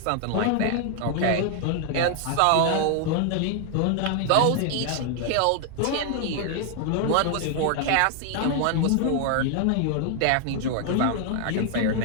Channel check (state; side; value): different; both; correlation 0.00